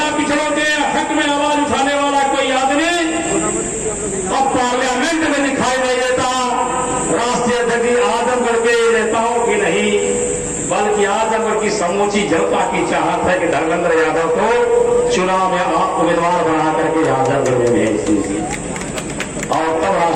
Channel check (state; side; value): identical; both; correlation 1.00